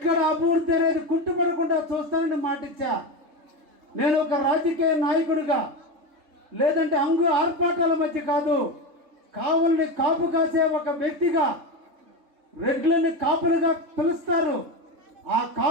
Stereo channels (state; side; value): late; left; 3.7 ms